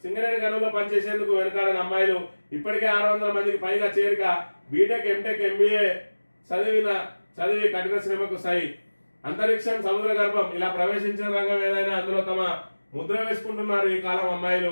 సింగరేణి గనుల్లో పనిచేసేందుకు వెనుకాడని అమ్మాయిలు ఇప్పటికే 600 మందికి పైగా చేరిక, బీటెక్, ఎంటెక్, ఎంబీఏ చదివి కఠిన శ్రమకు సై, అంతరిక్షం, సముద్ర గర్భం ఇలా ప్రవేశించిన రంగం ఏదైనా అందులో తమ ముద్ర వేసుకుంటున్నారు ఈ కాలం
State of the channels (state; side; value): inverted; both; correlation -1.00